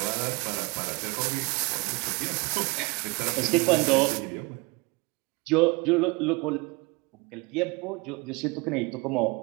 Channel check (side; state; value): left; quieter; 26.8 dB